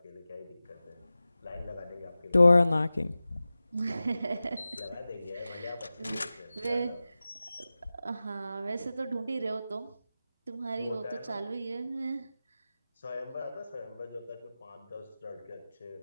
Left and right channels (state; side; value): inverted; both; correlation -0.95